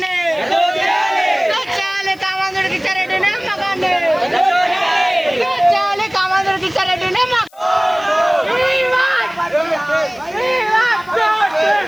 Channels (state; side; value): noise; left; hiss, 29 dB below the sound